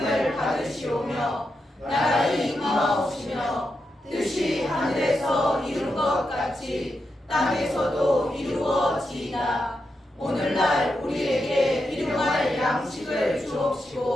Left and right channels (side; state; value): both; normal; correlation 0.86